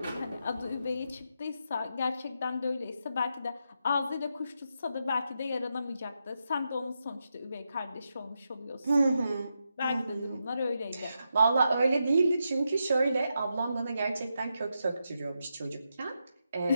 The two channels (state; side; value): inverted; both; correlation -0.85